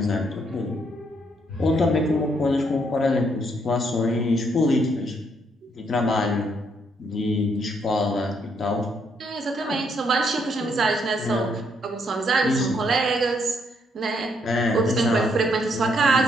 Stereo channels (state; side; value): normal; both; correlation 0.73